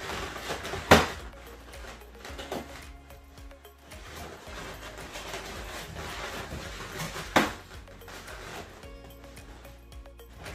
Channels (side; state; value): both; identical; correlation 1.00